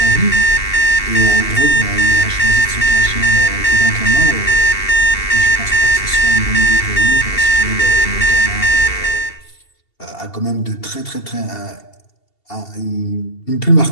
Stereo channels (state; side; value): late; right; 2.7 ms